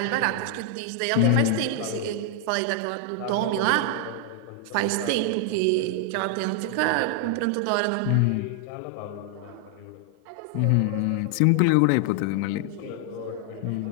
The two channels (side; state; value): both; different; correlation 0.00